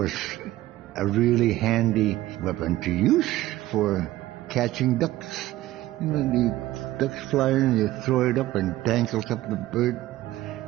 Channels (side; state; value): left; quieter; 16.0 dB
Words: a really handy weapon to use for catching ducks. You know, the ducks fly in, you throw it up and tangles up the bird,